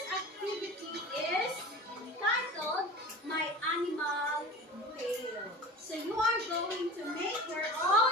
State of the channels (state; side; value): normal; both; correlation 0.35